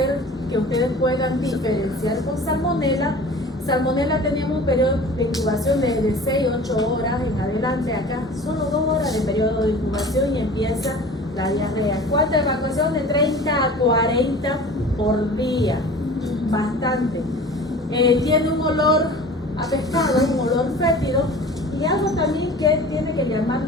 que ustedes puedan diferenciar con Salmonella Salmonella teníamos un periodo de incubación de 6 a 8 horas en adelante. Acá solo 2 horas de periodo de incubación y empieza la diarrea. ¿Cuánta evacuación? De 30 a 40 por día. Bastante. Tiene un olor a pescado, un olor fétido. Y algo también que tiene que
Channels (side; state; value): both; normal; correlation 0.41